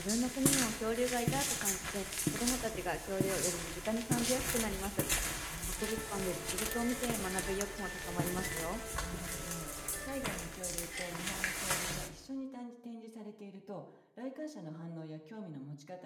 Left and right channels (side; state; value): both; identical; correlation 1.00